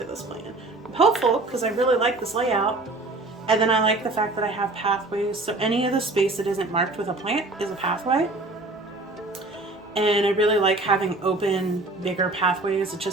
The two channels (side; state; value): left; quieter; 3.0 dB